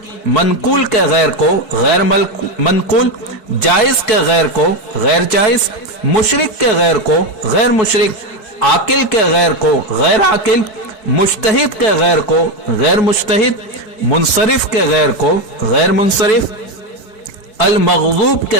मनकूल के गैर को गैर मनकूल, जायज के गैर को गैर जायज, मुशरिक के गैर को गैर मुशरिक, आकिल के गैर को गैर आकिल, मुज्तहिद के गैर को गैर मुज्तहिद, मुनसरिफ के गैर को गैर मुनसरिफ, अल मग़ज़ूब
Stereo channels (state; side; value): late; right; 4.6 ms